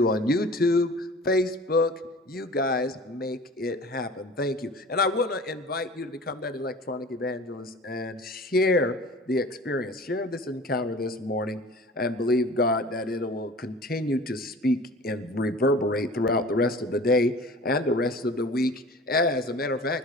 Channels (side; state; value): both; normal; correlation 0.43